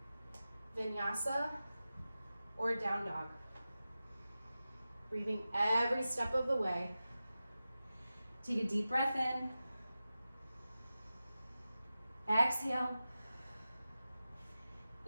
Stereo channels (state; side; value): inverted; both; correlation -0.94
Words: vinyasa. or down dog. Breathing every step of the way. Take a deep breath in. Exhale.